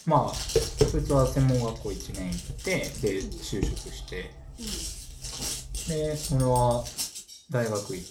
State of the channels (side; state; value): both; identical; correlation 1.00